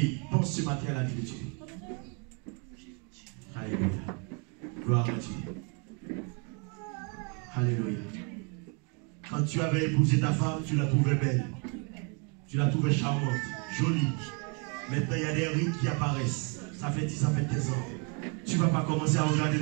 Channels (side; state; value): left; quieter; 35.9 dB